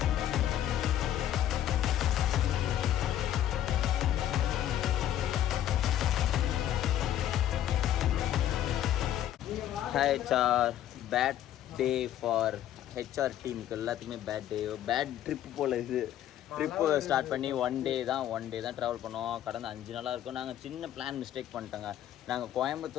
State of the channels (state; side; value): quieter; right; 11.6 dB